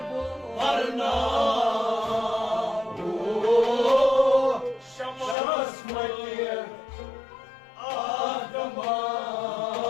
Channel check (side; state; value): right; drops out; at 5.4 s